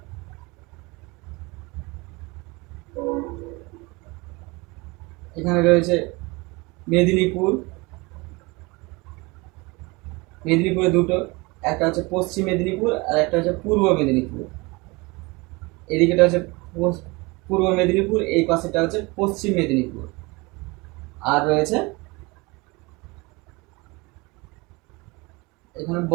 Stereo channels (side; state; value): left; quieter; 25.3 dB